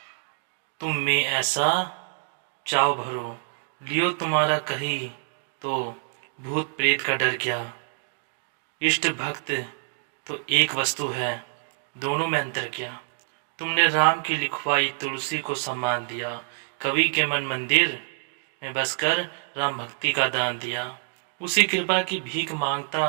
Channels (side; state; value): left; silent; 61 dB below the other